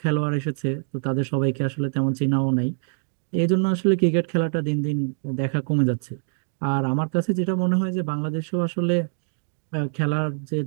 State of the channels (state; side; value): silent; left; digital silence